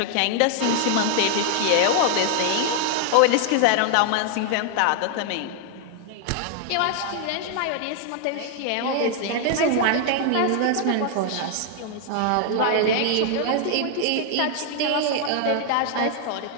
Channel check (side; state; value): both; different; correlation 0.00